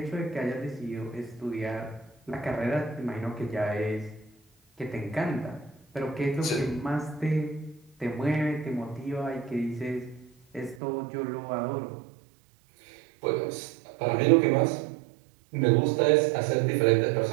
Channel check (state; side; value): drops out; left; at 10.8 s